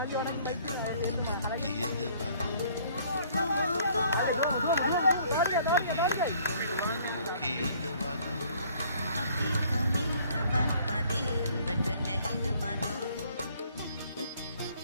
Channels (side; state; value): both; inverted; correlation -0.59